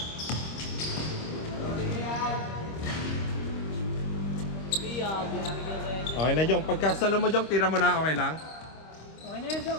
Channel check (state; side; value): late; right; 25 ms